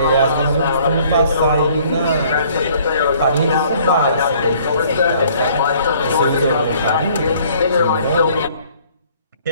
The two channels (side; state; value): both; inverted; correlation -0.58